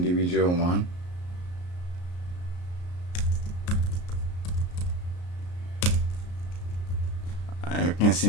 one. You can see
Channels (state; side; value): late; right; 34 ms